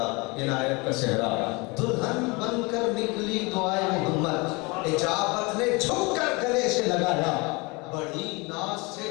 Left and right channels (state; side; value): quieter; right; 27.0 dB